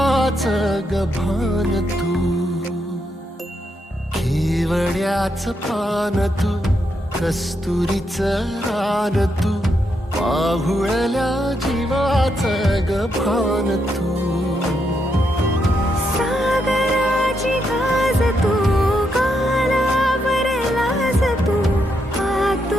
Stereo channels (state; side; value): normal; both; correlation 0.80